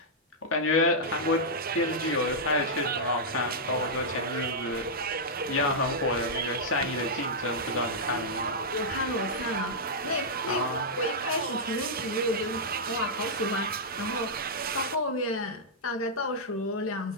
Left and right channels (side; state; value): both; normal; correlation -0.08